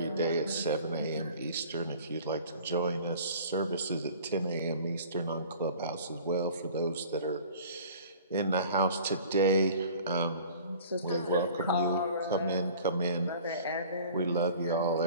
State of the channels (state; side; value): inverted; both; correlation -0.46